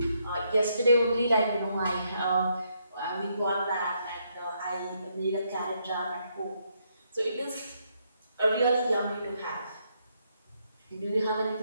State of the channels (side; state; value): both; inverted; correlation -0.75